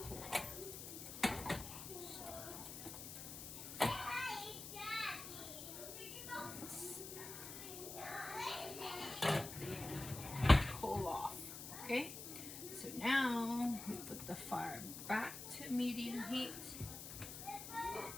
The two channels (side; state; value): left; noise; hiss, 9 dB below the sound